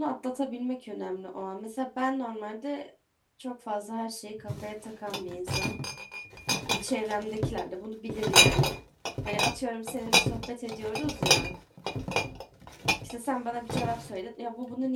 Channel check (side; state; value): both; identical; correlation 1.00